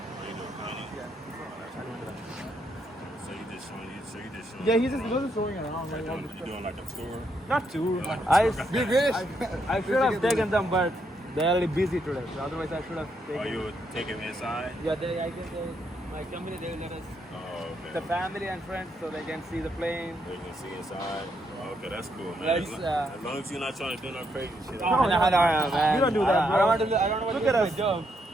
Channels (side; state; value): both; normal; correlation 0.77